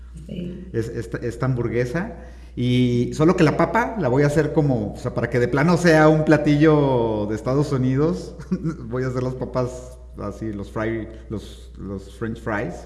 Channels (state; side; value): identical; both; correlation 1.00